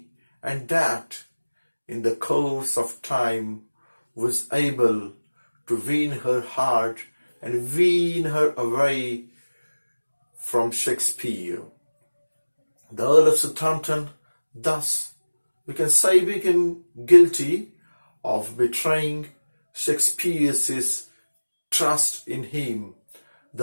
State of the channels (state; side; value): inverted; both; correlation -1.00